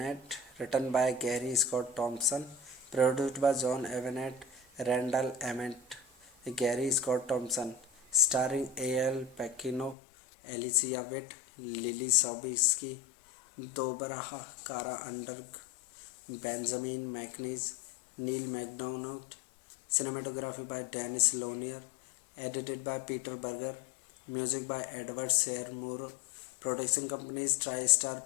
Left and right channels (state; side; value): drops out; right; at 10.0 s